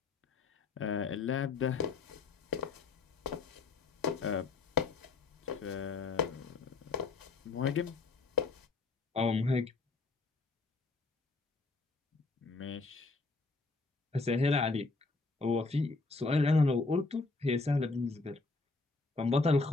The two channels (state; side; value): quieter; right; 3.8 dB